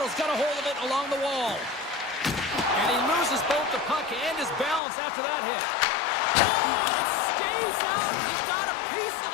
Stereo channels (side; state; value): right; drops out; at 4.8 s